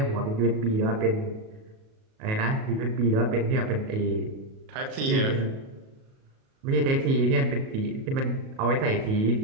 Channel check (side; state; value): left; late; 37 ms